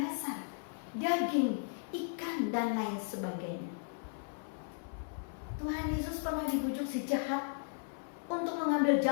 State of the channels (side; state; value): right; silent; 54 dB below the other